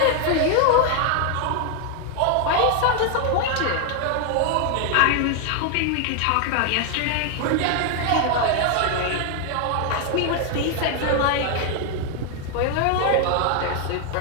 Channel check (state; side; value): different; both; correlation 0.01